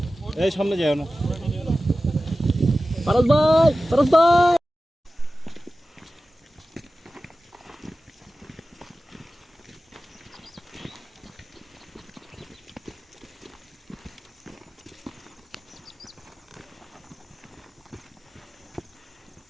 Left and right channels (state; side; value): normal; both; correlation 0.95